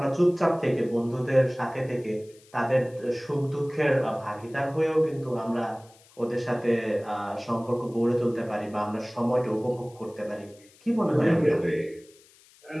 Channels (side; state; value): left; noise; hiss, 27 dB below the sound